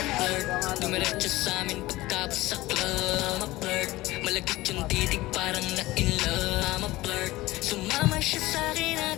flirt, dumiretso sa amin pagkapos sa club. I'm a flirt, malagkit yung titig parang na in love. I'm a flirt, sumama siya sa akin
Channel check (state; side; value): quieter; right; 18.6 dB